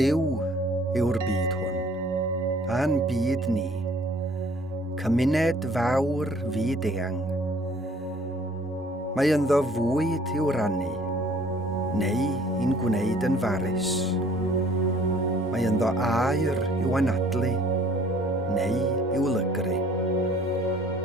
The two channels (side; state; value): both; normal; correlation 0.56